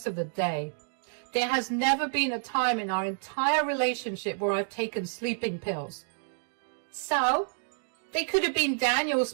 of the day. There has never been a time in our entire relationship where I've taken sleeping pills. So, they could have been Daniel's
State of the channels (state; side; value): silent; left; digital silence